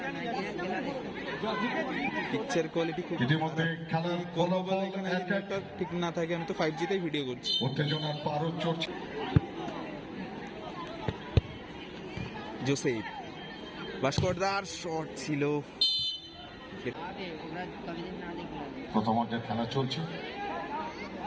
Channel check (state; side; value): identical; both; correlation 1.00